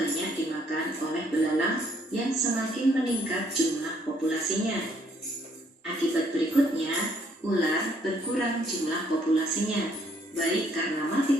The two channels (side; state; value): both; normal; correlation 0.67